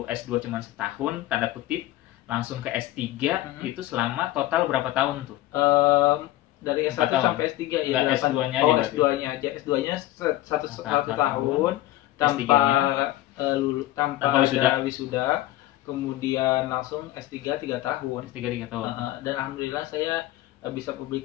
S2 cuma setahun, tanda kutip, langsung ke S3, itu selama total berapa tahun tuh? Dari S1 sampai S3 ya. S2-nya aja. S2-nya satu tahun tanpa ada wisuda. Kemudian langsung S3 3 tahun. Dan Dan alhamdulillah saya bisa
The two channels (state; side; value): quieter; right; 15.6 dB